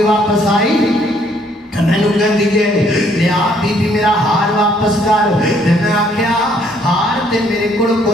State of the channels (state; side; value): normal; both; correlation 0.66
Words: واپس آئی میں نے کہہ دیجئے لیا بی بی میرا ہار واپس کر. میں آکھیا ہار تے میرے کڑ